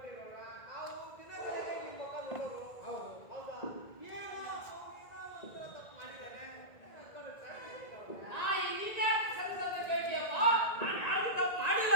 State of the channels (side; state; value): right; late; 1.8 ms